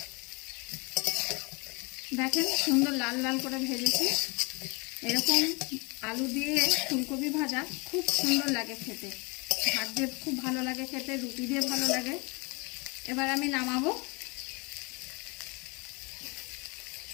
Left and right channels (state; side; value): quieter; right; 29.0 dB